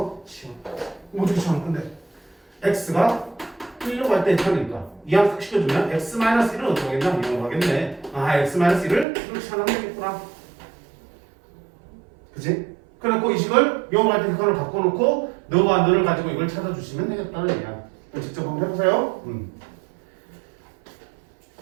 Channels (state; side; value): drops out; left; at 9.1 s